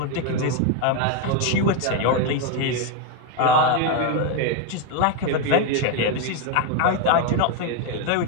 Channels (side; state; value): both; different; correlation 0.01